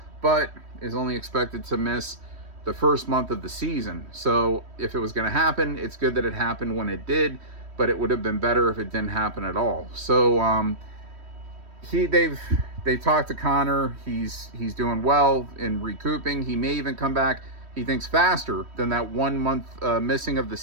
but is only expected to miss the first month of the season. So if it was going to happen, it's good that it happened when it did, but it would have been better if it didn't happen at all. So they've talked to Connor. He's doing well in recouping. He may even come back, he thinks, faster than that 1 month missing of the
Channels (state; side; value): late; left; 3.1 ms